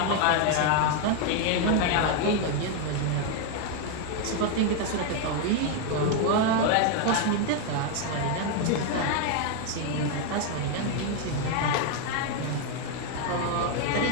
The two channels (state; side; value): different; both; correlation 0.01